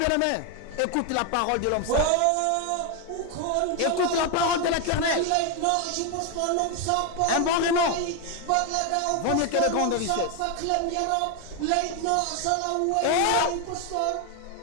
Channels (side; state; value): both; different; correlation 0.01